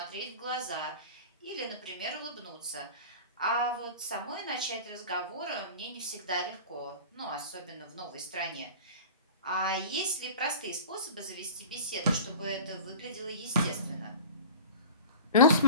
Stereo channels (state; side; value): inverted; both; correlation -0.36